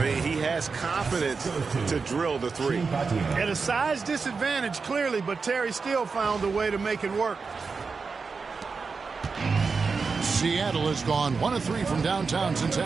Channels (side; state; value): left; quieter; 4.8 dB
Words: he has confidence to drill the 3. At a size disadvantage, clearly, but Terry still found a way to make it work. Seattle has gone 1 of 3 from downtown since